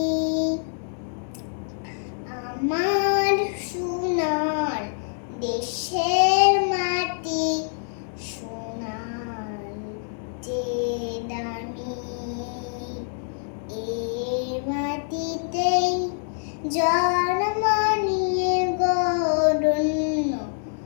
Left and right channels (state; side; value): silent; right; digital silence